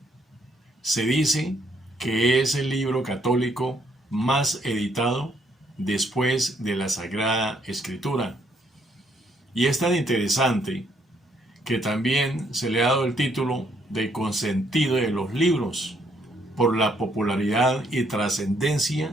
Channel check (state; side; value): normal; both; correlation 0.70